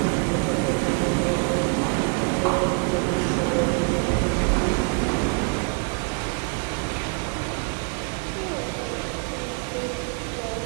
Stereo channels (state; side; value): quieter; left; 38.9 dB